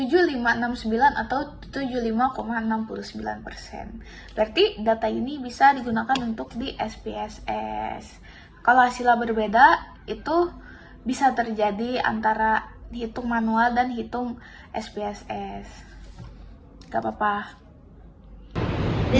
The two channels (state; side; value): identical; both; correlation 1.00